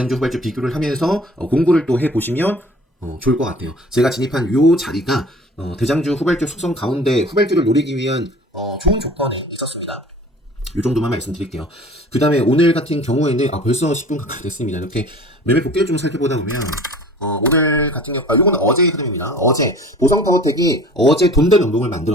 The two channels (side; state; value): both; normal; correlation 0.46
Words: 후발주 비교를 하면서 공부를 또 해보시면 좋을 것 같아요. 제가 진입한 요 자리가 대장주 후발주 속성 가운데 후발주를 노리기 위한 좋은 조건에 있었습니다. 요 정도만 말씀드릴게요. 그 다음에 오늘 같은 경우에는 벌써 10분 가까이 됐습니다. 이렇게 매매 복귀를 좀 살펴보다 보면 오늘 같은 경우 요거는 어제의 흐름입니다. 어제 보성타워텍이 어제 돈던 연봉을